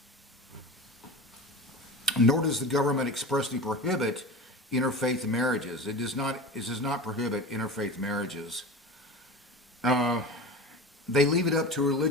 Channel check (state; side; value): normal; both; correlation 0.31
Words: Nor does the government expressly prohibit interfaith marriages. It does not prohibit interfaith marriages. They leave it up to